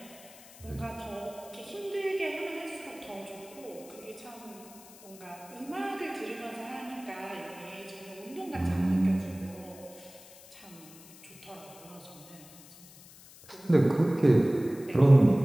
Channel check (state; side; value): noise; left; hiss, 21 dB below the sound